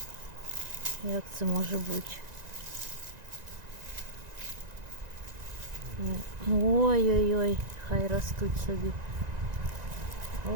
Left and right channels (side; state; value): left; late; 1.9 ms